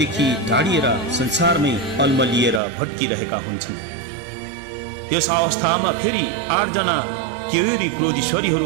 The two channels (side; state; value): left; drops out; at 2.6 s